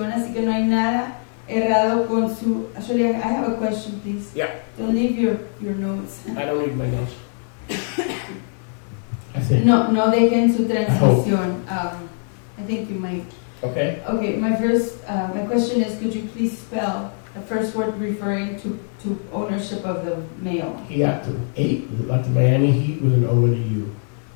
así que no hay nada errado con su... Actually, I have a question, please. Yeah, Don't leave your notes. I don't need my notes. I think. No dejen su transmisión. I think you might. Okay. Okay, my question is, could you please spell the first word referring to ownership of the male? Hiato. 8, like the Miami Heat with an O and a U.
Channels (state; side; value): silent; right; 58 dB below the other